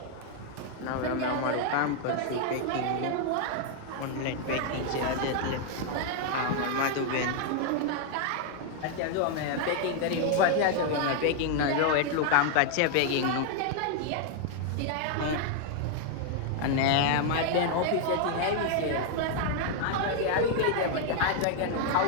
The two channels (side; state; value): both; different; correlation 0.00